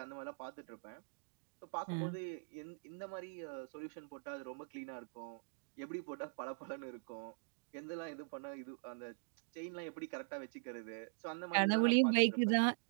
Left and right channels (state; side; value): silent; left; digital silence